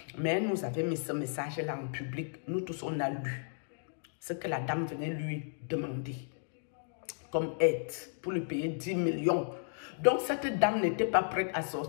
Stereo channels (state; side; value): silent; right; digital silence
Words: Mais elle nous avait mis ce message-là en public. Nous tous, on a lu ce que la dame venait lui demander comme aide pour lui payer 10 millions. Donc, cette dame n'était pas prête à